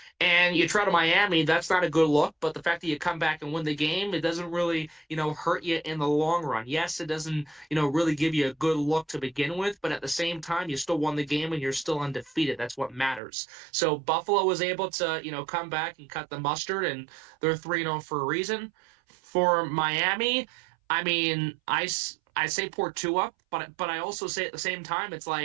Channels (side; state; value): left; drops out; at 13.2 s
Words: And you try to Miami, that's not a good look. But the fact that you come back and win the game, it doesn't really, hurt you in the long run. Yes, it doesn't, really give you a good look to begin with. But at the same time, you still won the game and you're still undefeated. That's what matters. So Buffalo was able to, come back and cut the mustard, and they're 3-0 for a reason. For Miami, I mean, I say poor Tua, but I also say at the same time, it's